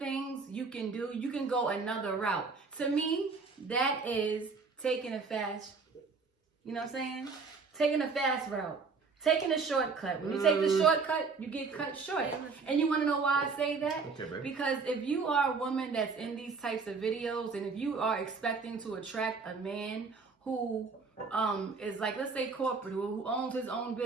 you can do. You can go another route. To me, that is taking a fast, you know what I'm saying? Taking a fast route. Taking a shortcut. When you take the shortcut, you get cut short. And you want to know why I say that? Okay, babe. Because if you are a woman that's in these types of videos, and if you are expecting to attract a man who is like, let's say corporate, who owns his own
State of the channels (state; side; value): quieter; left; 4.6 dB